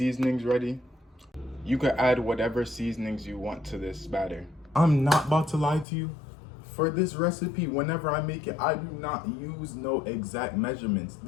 ready. You could add whatever seasonings you want to this batter. I'm not about to lie to you. For this recipe, whenever I make it, I do not use no exact measurements.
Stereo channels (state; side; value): drops out; right; at 5.9 s